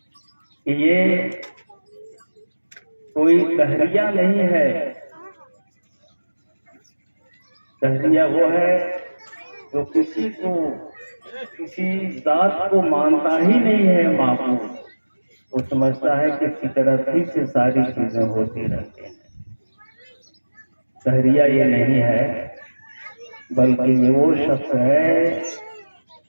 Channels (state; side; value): inverted; both; correlation -1.00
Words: کہ یہ کوئی تحریہ نہیں ہے. تحریہ وہ ہے جو کسی کو، کسی ذات کو مانتا ہی نہیں ہے معبود، وہ سمجھتا ہے کہ فطرت ہی سے ساری چیزیں ہوتی رہتی ہیں. تحریہ یہ نہیں ہے، بلکہ یہ وہ شخص ہے